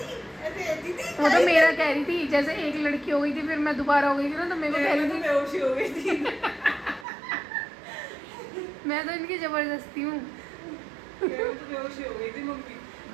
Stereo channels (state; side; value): drops out; left; at 7.1 s